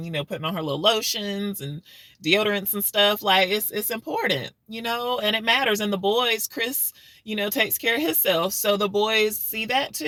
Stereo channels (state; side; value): identical; both; correlation 1.00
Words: putting on her little lotions and deodorants and stuff, like, it's important, and it matters. And the boys, Chris, takes care of himself, so the boys see that